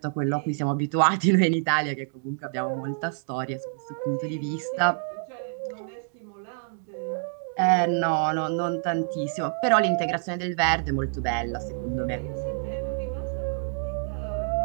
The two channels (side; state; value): left; silent; digital silence